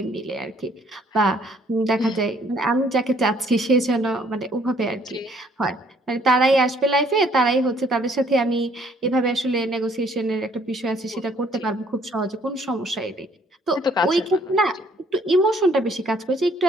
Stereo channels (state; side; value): normal; both; correlation 0.63